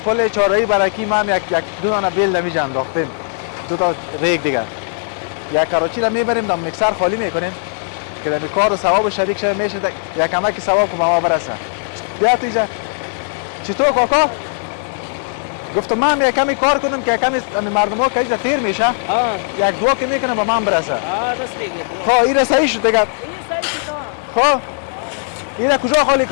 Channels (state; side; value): silent; right; digital silence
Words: پل چهارراهی برکی ما هم یک دو دانه بیل در اینجا انداختیم دو تا ریگ دیگه یک کراچی را میبریم در میکسر خالی میکنیم که در این کار و ثواب شریک شده میشه یک کمکی ثواب که به ما برسه بیا تو اینجا چطور کاکا گفتم من یک کمی کار کنم که کمی مردم ها که اینجا تیر میشه یک دو که میکنم به من برسه خب این صحیح شد دیگه خب این کجا خالی